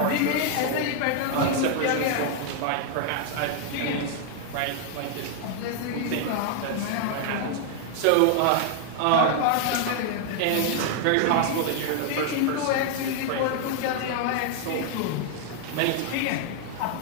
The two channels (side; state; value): both; different; correlation 0.00